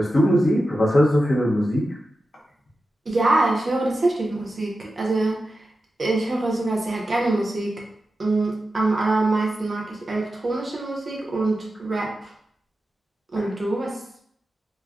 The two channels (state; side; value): normal; both; correlation 0.91